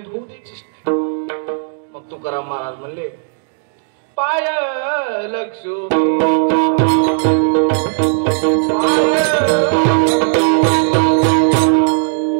होऊ द्यायचीच नाही. मग तुकाराम महाराज म्हणले, पाय लक्ष्मी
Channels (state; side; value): silent; left; digital silence